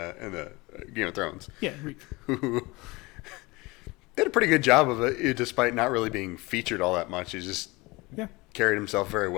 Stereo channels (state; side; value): quieter; right; 23.4 dB